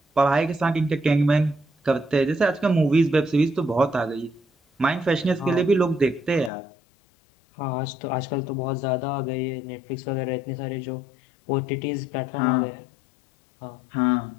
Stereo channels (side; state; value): right; drops out; at 6.5 s